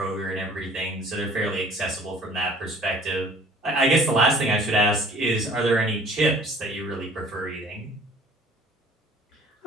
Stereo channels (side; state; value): both; normal; correlation 0.52